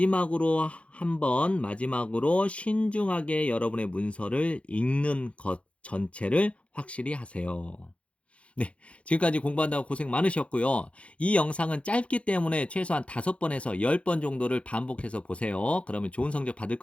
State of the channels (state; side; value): late; right; 0.062 ms